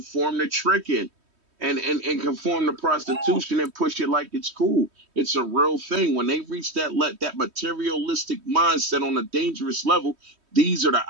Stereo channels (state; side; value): late; left; 3.1 ms